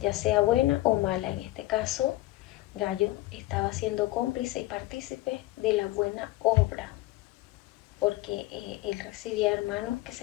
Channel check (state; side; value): quieter; right; 18.0 dB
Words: sea buena o mala. En este caso, Gallo estaba siendo cómplice y partícipe de la buena obra, porque él recibía hermanos que